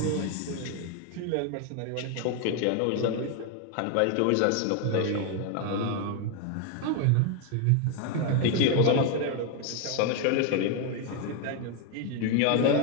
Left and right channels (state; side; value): different; both; correlation 0.01